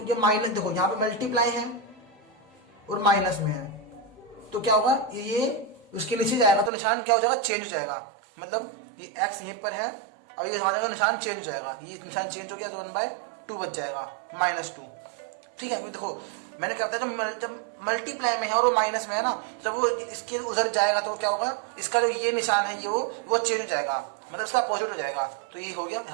ये माइनस, देखो यहाँ पे मल्टीप्लाई है और माइनस में है, तो क्या होगा, ये उसके नीचे जाएगा, तो निशान क्या हो जाएगा, चेंज हो जाएगा। मतलब ये x यहीं पर है, और ये हमारे निशान चेंज हो जाएगा, ये निशान चेंज हो गया, तो 1/2 बच जाएगा, -2। ठीक है, देखो मैंने क्या बताया, जब मल्टीप्लाई में है और वो माइनस में है ना, जब वो इसके उधर जाएगा तो क्या होगा, इसका जो ये निशान है ये वो चेंज हो जाएगा, मतलब इसका अपोजिट हो जाएगा। तो ये हो गया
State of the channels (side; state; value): left; drops out; at 6.7 s